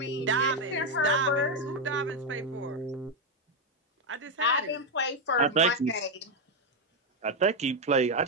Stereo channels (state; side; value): normal; both; correlation 0.04